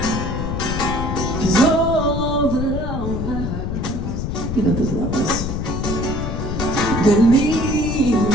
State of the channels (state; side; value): noise; left; rumble, 3 dB below the sound